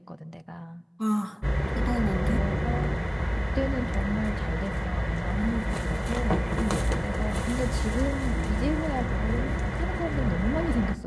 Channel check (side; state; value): both; identical; correlation 1.00